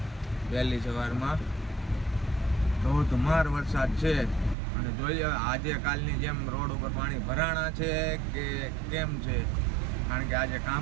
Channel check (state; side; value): drops out; left; at 4.5 s